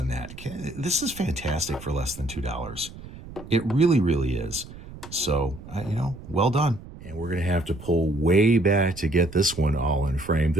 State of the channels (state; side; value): noise; right; rumble, 15 dB below the sound